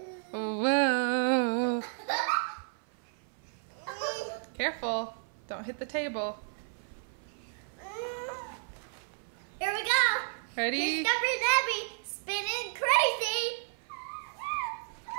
Whoa. Careful. Don't hit the table. Here we go. Ready? Here's Denver and Abby spinning crazy.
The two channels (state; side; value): silent; left; 56 dB below the other